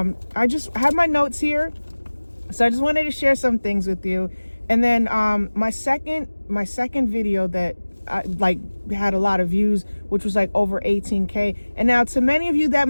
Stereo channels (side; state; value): both; inverted; correlation -1.00